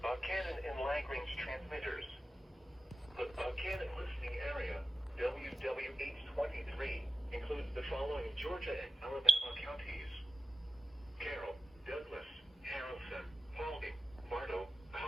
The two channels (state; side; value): normal; both; correlation 0.89